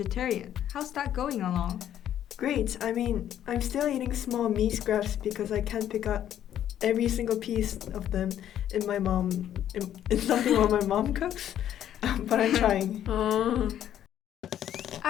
How's that going along? Great. I'm still eating small meat scraps because I can't pick up every single piece of them in something what my mom cooks. But I'm trying.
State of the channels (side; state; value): right; quieter; 10.9 dB